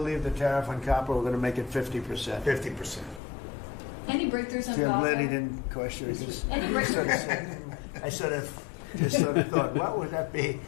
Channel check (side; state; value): right; drops out; at 3.2 s